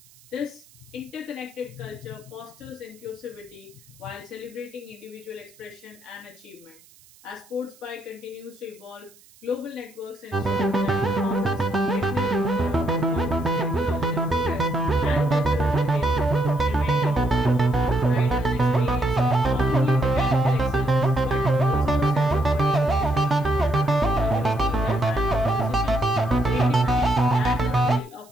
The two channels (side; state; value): right; noise; hiss, 27 dB below the sound